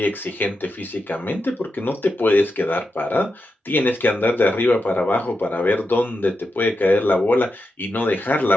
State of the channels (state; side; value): normal; both; correlation 0.88